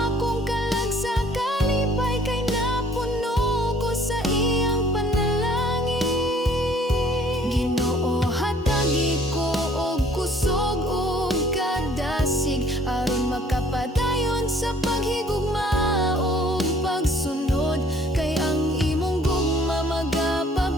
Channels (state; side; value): normal; both; correlation 0.57